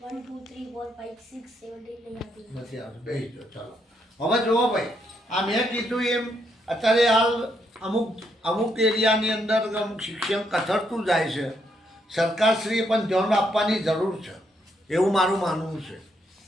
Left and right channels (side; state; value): both; normal; correlation 0.76